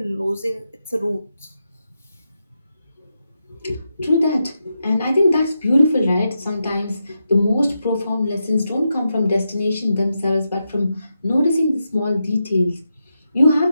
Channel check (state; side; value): inverted; both; correlation -0.87